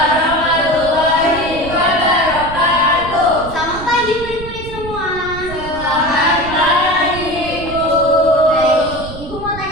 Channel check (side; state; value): right; noise; rumble, 12 dB below the sound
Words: wabarakatuh. Selamat pagi murid-murid semua. Selamat pagi, Ibu. Baik, Ibu mau